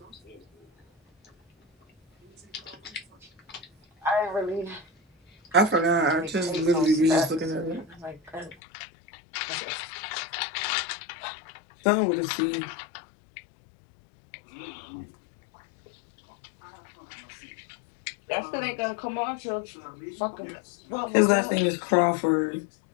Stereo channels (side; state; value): right; drops out; at 8.6 s